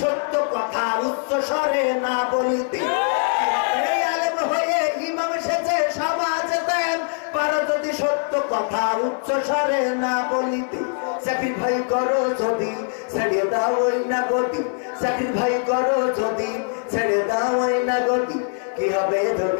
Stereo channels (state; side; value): silent; right; 64 dB below the other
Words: সত্য কথা উচ্চ স্বরে না বলিতে, কি হবে আলেম হয়ে ইমাম সেজে সমাজেতে, পারো যদি সত্য কথা উচ্চ স্বরে না বলিতে, স্যাক্রিফাই করো যদি ছেড়ে দাও ওই না গতি, স্যাক্রিফাই করো যদি ছেড়ে দাও ওই না গতি, কি হবে